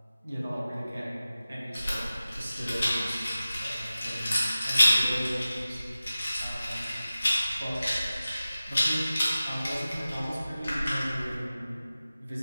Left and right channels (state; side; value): inverted; both; correlation -0.95